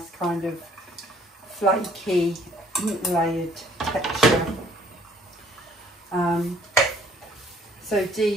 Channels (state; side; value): normal; both; correlation 0.60